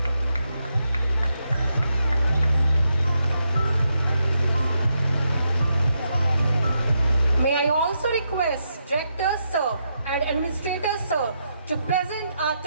May I also request Director Sir and Administrator Sir to present our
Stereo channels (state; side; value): inverted; both; correlation -0.81